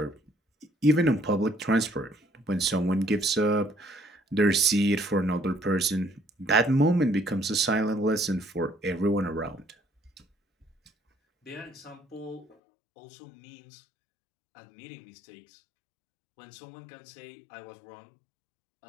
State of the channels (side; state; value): right; drops out; at 12.6 s